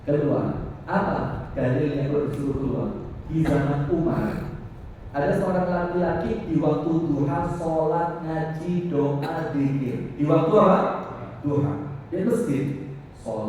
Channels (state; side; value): identical; both; correlation 1.00